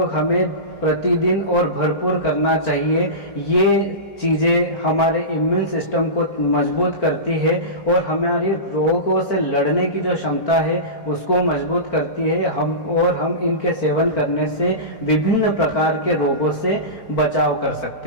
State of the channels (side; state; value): right; late; 4.4 ms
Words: हमें प्रतिदिन और भरपूर करना चाहिए। ये चीज़ें हमारे इम्यून सिस्टम को मजबूत करती है और हमारी रोगों से लड़ने की जो क्षमता है उसको मजबूत करती है। हम इनके सेवन करने से विभिन्न प्रकार के रोगों से बचाव कर